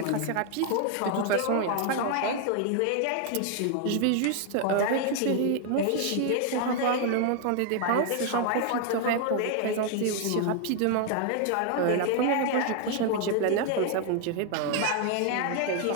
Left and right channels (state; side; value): different; both; correlation 0.01